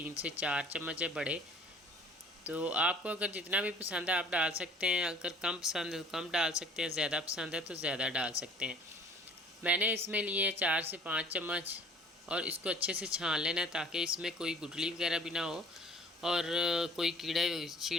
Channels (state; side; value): normal; both; correlation 0.51